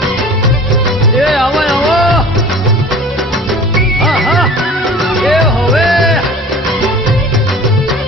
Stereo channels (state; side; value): normal; both; correlation 0.42